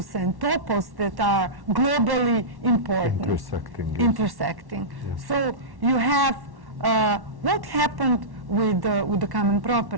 and topos that are globally important. Intersecting. Yes. So you have what happened with the common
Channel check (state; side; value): late; left; 1.1 ms